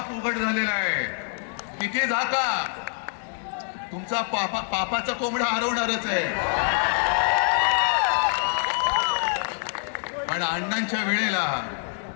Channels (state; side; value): silent; right; 60 dB below the other